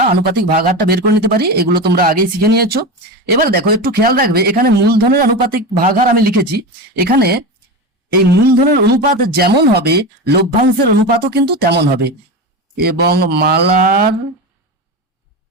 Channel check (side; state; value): both; normal; correlation 0.22